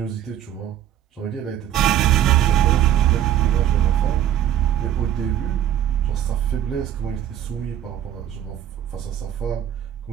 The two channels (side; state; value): left; quieter; 10.9 dB